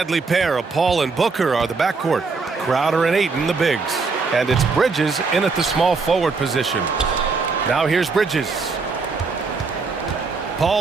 pair of Paul and Booker are the backcourt. Crowder and Ayton, the bigs. And it's Bridges in at the small forward position. Now here's Bridges.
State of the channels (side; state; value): left; quieter; 4.4 dB